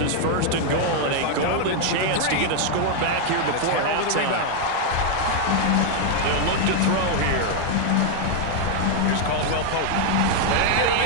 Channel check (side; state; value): both; different; correlation 0.00